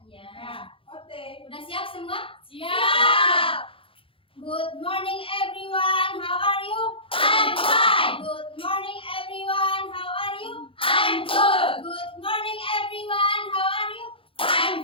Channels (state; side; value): late; right; 0.26 ms